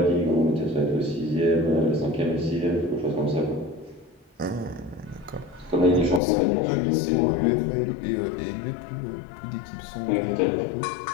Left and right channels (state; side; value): drops out; right; at 6.2 s